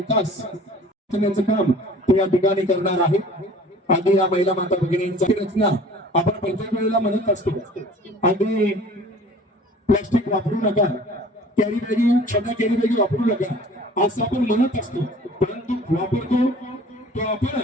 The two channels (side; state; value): both; normal; correlation 0.48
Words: करण्याचं काम ते या ठिकाणी करणार आहे. आधी या महिला माता भगिनींची रचना आपण प्रत्येक वेळेला म्हणत असतो, आधी प्लास्टिक वापरू नका, कॅरी बॅगी, छोट्या कॅरी बॅगी वापरू नका असं आपण म्हणत असतो, परंतु वापरतो तो